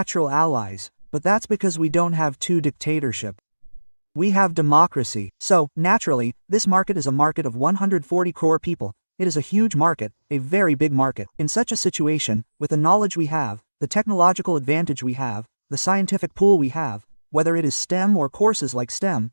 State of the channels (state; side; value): inverted; both; correlation -1.00